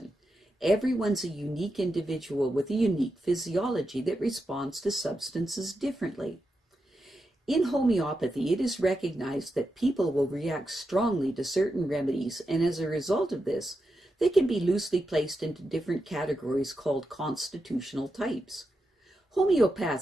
Everyone's a unique individual with a unique physiology that responds to substances differently. In homeopathy, it is recognized that people will react strongly to certain remedies, and as a result of this, they can be loosely placed into different categories called constitutional types.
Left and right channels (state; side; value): normal; both; correlation 0.87